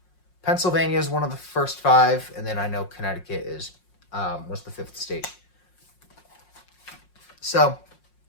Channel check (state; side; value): late; right; 5.5 ms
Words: Pennsylvania is one of the first 5, and then I know Connecticut was the 5th state. So